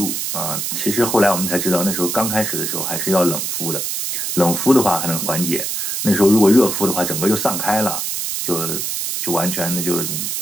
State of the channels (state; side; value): noise; right; hiss, 2 dB below the sound